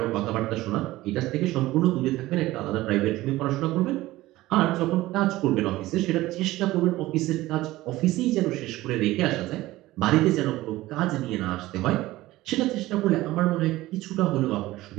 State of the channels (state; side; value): quieter; left; 17.3 dB